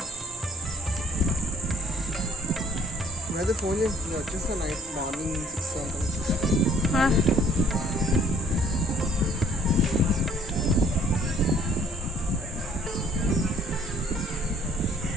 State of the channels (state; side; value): normal; both; correlation 0.59